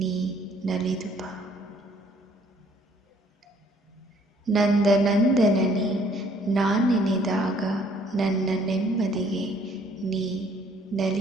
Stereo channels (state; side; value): normal; both; correlation 0.61